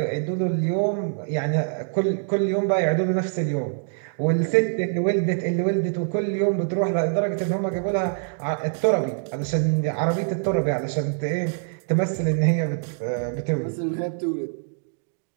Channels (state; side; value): silent; left; digital silence